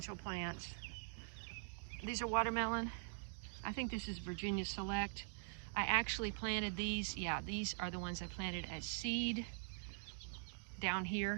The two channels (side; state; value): left; silent; digital silence